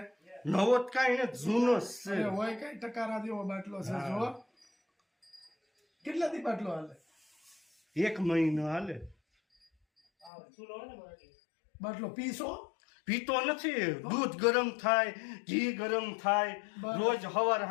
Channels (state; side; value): drops out; right; at 10.3 s